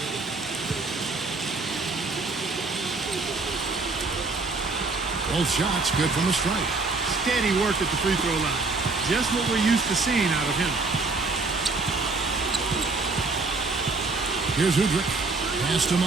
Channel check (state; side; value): quieter; left; 3.7 dB